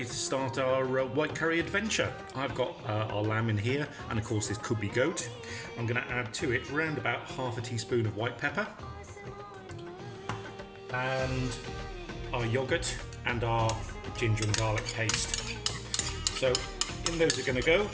to start our white curry adventure. I've got our lamb in here, and of course this could be goat. I'm going to add to it around about half a teaspoon of white pepper, and our yogurt and our ginger and garlic paste. So in those are going to go.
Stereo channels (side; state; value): both; identical; correlation 1.00